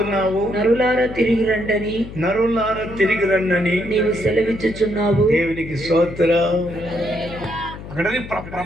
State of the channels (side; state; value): left; noise; hum, 13 dB below the sound